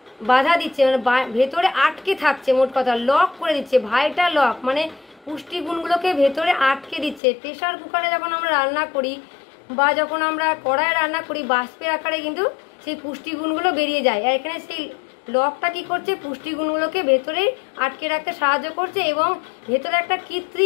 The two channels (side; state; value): right; drops out; at 7.2 s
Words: বাধা দিচ্ছে, মানে ভেতরে আটকে থাকছে, মোট কথা লক করে দিচ্ছে। ভাইটা লক মানে পুষ্টিগুণগুলোকে ভেতরে আটকে দিচ্ছে। প্রেশার কুকারে যখন আমরা রান্না করি বা যখন আমরা কড়াইয়ে রান্না করি, বাষ্পের আকারে কিন্তু সেই পুষ্টিগুণগুলো বেরিয়ে যায়। আর এখানে সেই লকটা কি করছে, পুষ্টিগুণগুলোকে ভেতরে আটকে রাখতে সাহায্য করছে, এবং ভেতরে একটা